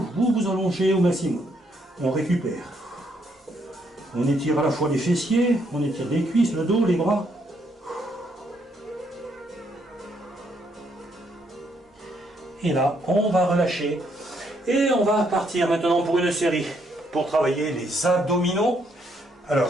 vous vous allongez au maximum. On récupère. On étire à la fois les fessiers, on étire les cuisses, le dos, les bras. Et là, on va relâcher. Et on va partir maintenant pour une série, pour travailler les abdominaux.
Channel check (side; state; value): both; normal; correlation 0.73